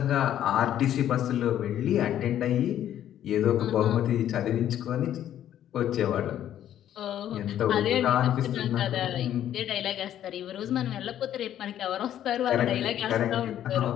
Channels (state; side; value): quieter; right; 11.2 dB